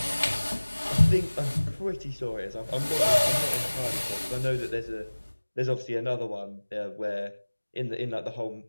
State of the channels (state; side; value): inverted; both; correlation -1.00